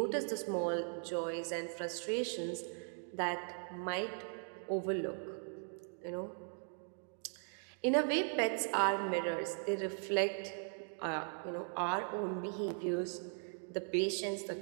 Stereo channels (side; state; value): left; silent; 52 dB below the other